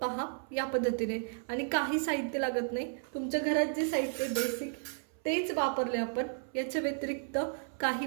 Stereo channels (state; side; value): silent; left; 56 dB below the other